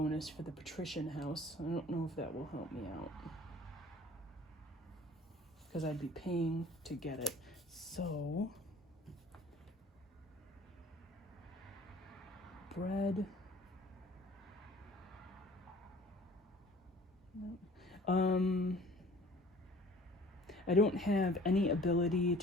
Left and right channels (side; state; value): both; normal; correlation 0.50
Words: for the patrician house. I don't know if that will help me out, because I'd be paying to get it. So, bread, I don't have any ability